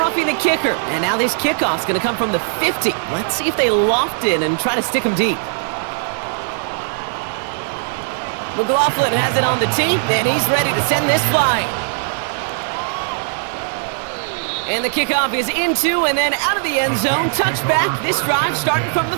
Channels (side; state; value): left; silent; 67 dB below the other